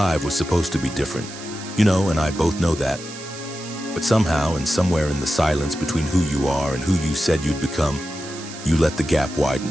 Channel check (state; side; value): noise; right; hiss, 14 dB below the sound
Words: was supposed to be different. You know, and I both know that. But somehow and somewhere in the silence between who you are and who you said you'd become, you let the gap